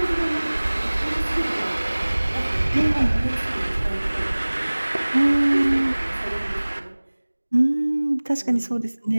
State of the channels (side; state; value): both; inverted; correlation -1.00